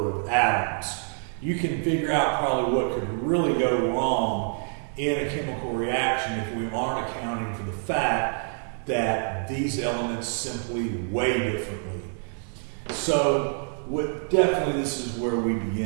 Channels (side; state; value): left; silent; 57 dB below the other